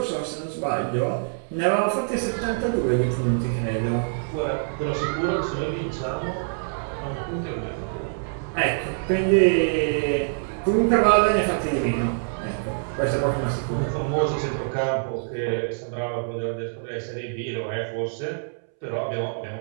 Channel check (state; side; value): silent; left; 62 dB below the other